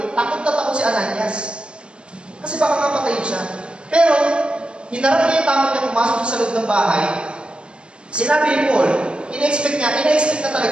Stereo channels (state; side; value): late; left; 0.051 ms